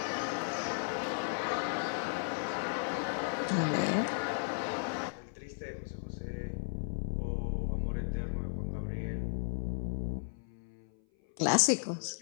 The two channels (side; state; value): right; silent; 54 dB below the other